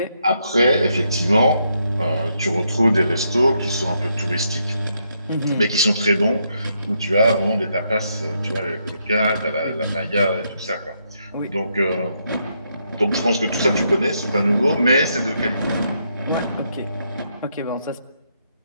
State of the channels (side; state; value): both; inverted; correlation -0.77